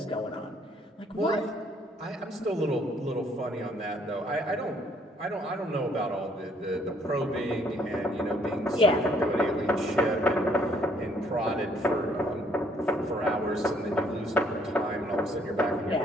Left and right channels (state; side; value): normal; both; correlation 0.65